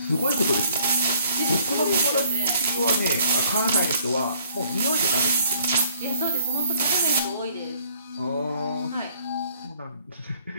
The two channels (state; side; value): inverted; both; correlation -0.62